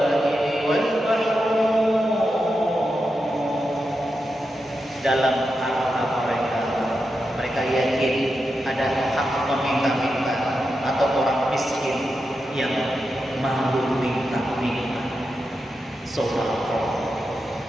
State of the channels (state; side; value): normal; both; correlation 0.88